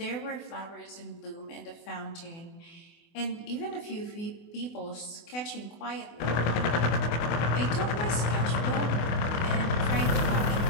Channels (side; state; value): right; late; 24 ms